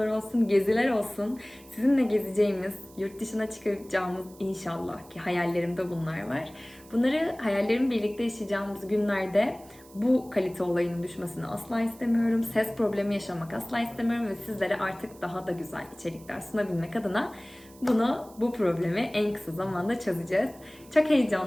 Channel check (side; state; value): right; noise; hiss, 24 dB below the sound